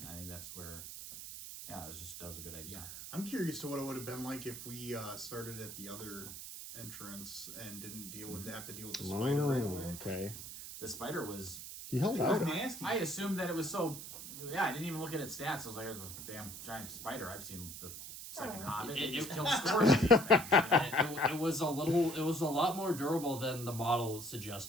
think that's where, that was a good idea. I'm curious to what it would have been like if we started at the other entrance and didn't have to deal with the spider right away. Okay. The spider was... He held out. Nasty. I assumed that it was so... Yeah, I didn't even look at its stats. I was like, there's a damn giant spider. I've seen the second Hobbit. It just kills scores of these things. It was a lot more durable than the model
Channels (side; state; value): right; noise; hiss, 10 dB below the sound